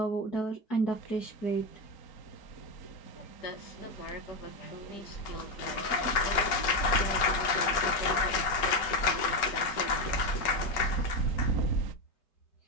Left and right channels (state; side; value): late; right; 5.3 ms